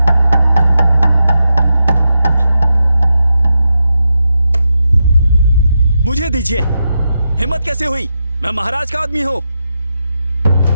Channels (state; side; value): inverted; both; correlation -0.87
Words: मुझे दीजिए। हिम्मत कैसे हुई? मैं महाराज का आदमी हूँ।